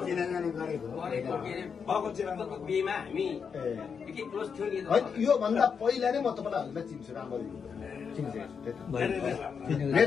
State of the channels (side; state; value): right; quieter; 6.3 dB